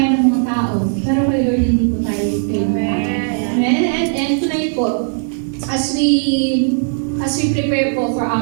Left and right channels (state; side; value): silent; left; digital silence